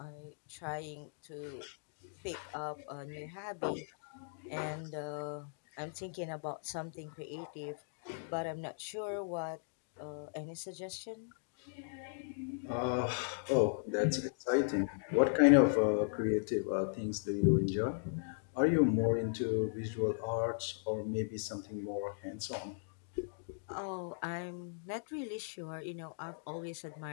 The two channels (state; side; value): silent; right; digital silence